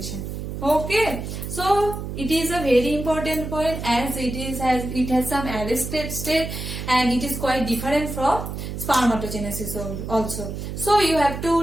Okay, so it is a very important point as it has some arrested state and it is quite different from spermatogenesis also. So you have to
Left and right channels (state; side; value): noise; right; hum, 6 dB below the sound